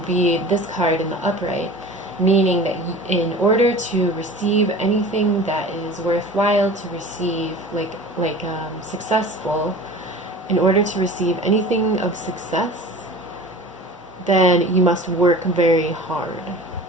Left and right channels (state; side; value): normal; both; correlation 0.39